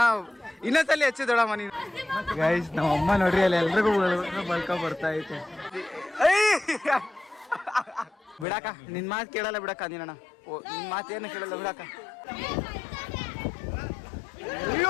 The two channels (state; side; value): drops out; right; at 8.5 s